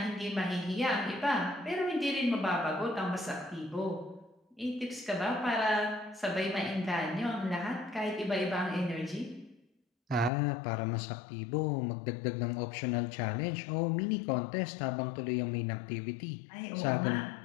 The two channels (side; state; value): right; drops out; at 10.3 s